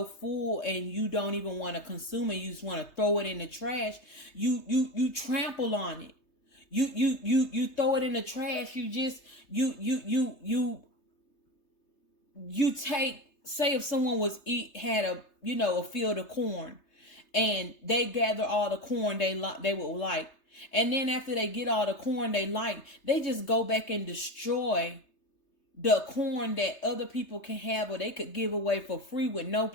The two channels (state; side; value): late; right; 3.3 ms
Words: full and you don't even want to consume it, you just want to throw it in the trash, you trample on it. You throw it in the trash. You take, say if someone had a field of corn, and they gather all the corn they would like, and then after they get all the corn they like, they just go back and destroy the corn that other people can have, or they could give away for free with no